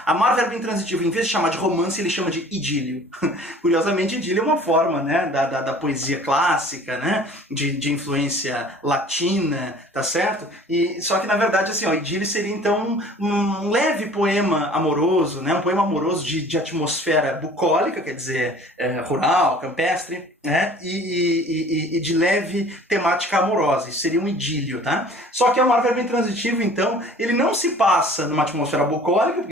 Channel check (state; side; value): normal; both; correlation 0.48